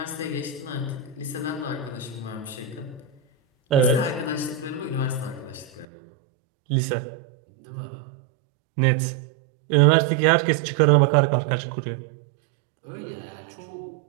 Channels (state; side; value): drops out; left; at 5.9 s